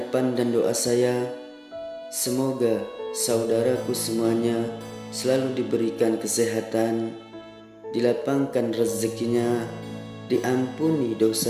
dan doa saya, semoga saudaraku semuanya selalu diberikan kesehatan, dilapangkan rezekinya, diampuni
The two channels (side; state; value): both; identical; correlation 1.00